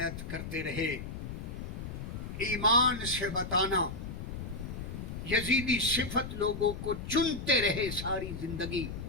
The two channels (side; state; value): left; noise; rumble, 7 dB below the sound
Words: کرتے رہے ایمان سے بتانا یزیدی صفت لوگوں کو چنتے رہے ساری زندگی